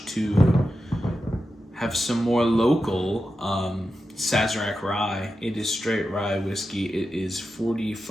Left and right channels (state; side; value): normal; both; correlation 0.90